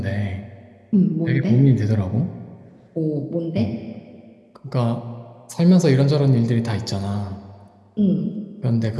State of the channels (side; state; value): both; identical; correlation 1.00